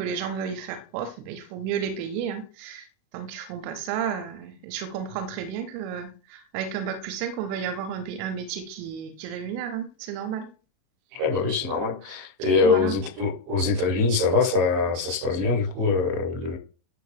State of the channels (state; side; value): late; left; 37 ms